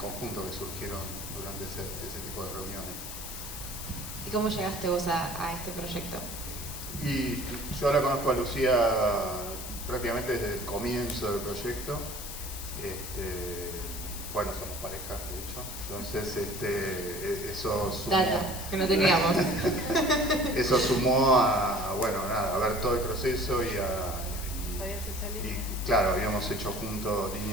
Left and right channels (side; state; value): left; noise; hiss, 9 dB below the sound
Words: que surgieron durante ese tipo de reuniones. ¿Y cómo llegaste vos a este proyecto? Y yo la conozco a Lucía prácticamente desde el comienzo del proyecto. Bueno, somos pareja, de hecho. Entonces, eso sumó... Data, que no teníamos. Eso sumó a ver todo el proceso y claro, habíamos hecho juntos